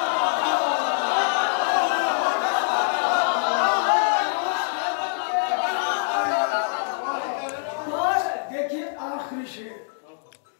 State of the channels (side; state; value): right; silent; digital silence